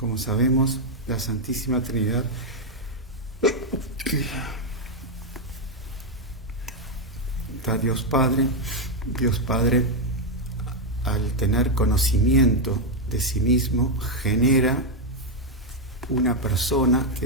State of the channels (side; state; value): both; normal; correlation 0.01